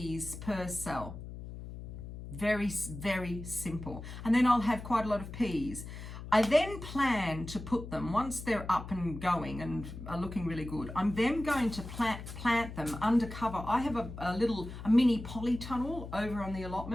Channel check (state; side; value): noise; left; hum, 11 dB below the sound